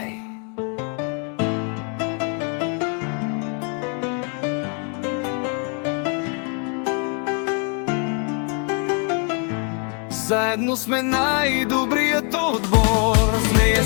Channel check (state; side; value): quieter; right; 38.7 dB